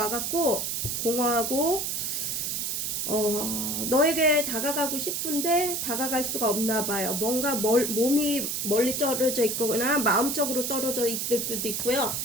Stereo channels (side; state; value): right; noise; hiss, 1 dB below the sound